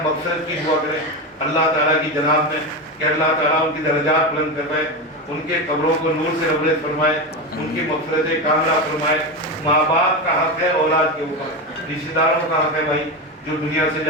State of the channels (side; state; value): both; normal; correlation 0.17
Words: مغفرت کی دعا کریں اللہ تعالیٰ کی جناب میں کہ اللہ تعالیٰ ان کی درجات بلند کروائے، ان کے قبروں کو نور سے روشن فرمائے، ان کی مغفرت کاملہ فرمائے۔ ماں باپ کا حق ہے اولاد کے اوپر، رشتہ داروں کا حق ہے بھائی جو دنیا سے